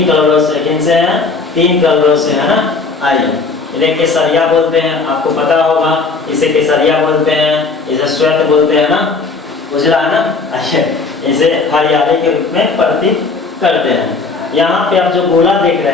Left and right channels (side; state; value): right; quieter; 4.3 dB